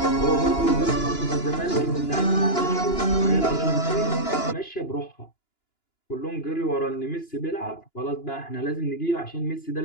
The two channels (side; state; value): right; late; 2.9 ms